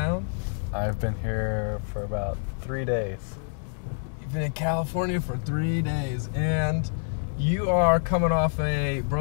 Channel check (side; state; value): right; silent; digital silence